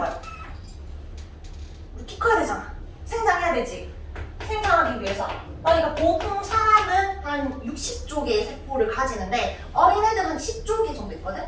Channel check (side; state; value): both; identical; correlation 1.00